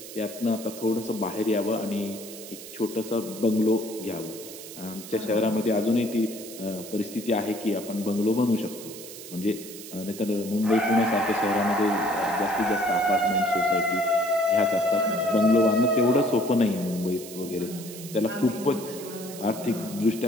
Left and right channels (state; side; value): noise; right; hiss, 13 dB below the sound